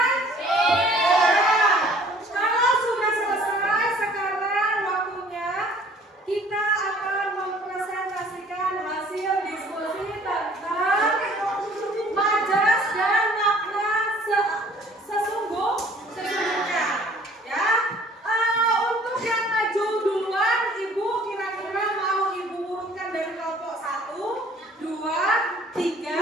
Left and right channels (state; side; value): normal; both; correlation 0.54